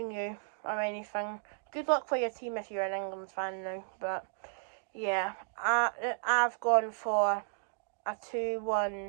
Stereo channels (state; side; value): silent; left; digital silence